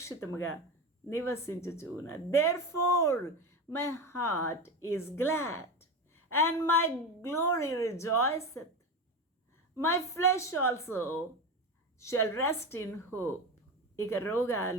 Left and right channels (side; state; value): both; normal; correlation 0.22